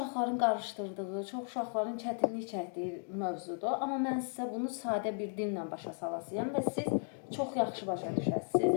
qarışdırdığı, çox uşaqların çətinlik çəkdiyi mövzudur. Amma mən sizə bunu sadə bir dillə başa salasıyam və siz çox yaxşı başa düşəsiniz.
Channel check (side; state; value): right; silent; 54 dB below the other